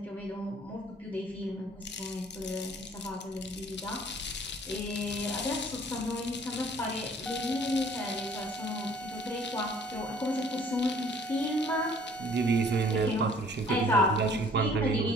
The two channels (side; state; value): both; normal; correlation 0.56